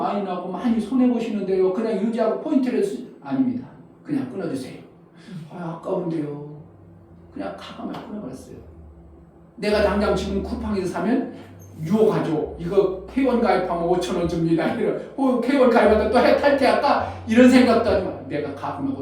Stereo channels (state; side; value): identical; both; correlation 1.00